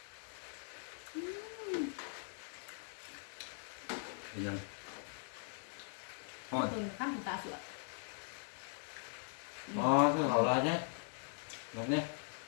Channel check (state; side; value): silent; right; 51 dB below the other